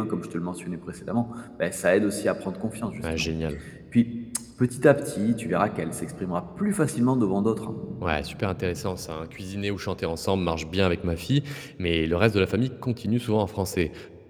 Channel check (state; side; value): identical; both; correlation 1.00